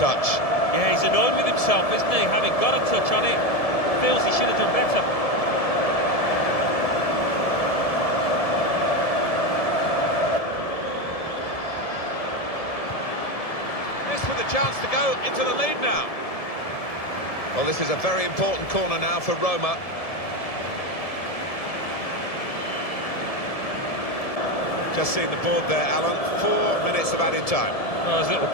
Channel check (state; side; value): late; right; 1.7 ms